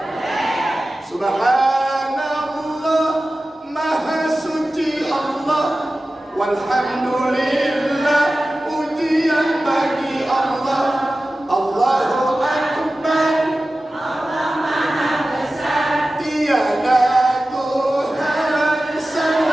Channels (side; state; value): both; normal; correlation 0.95